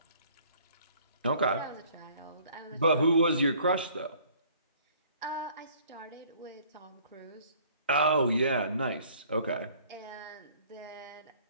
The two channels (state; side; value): inverted; both; correlation -0.56